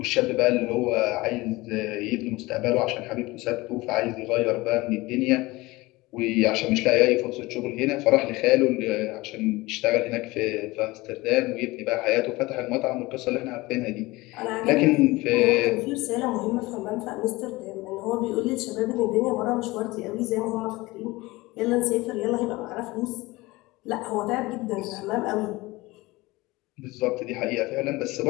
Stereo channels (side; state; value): right; quieter; 21.0 dB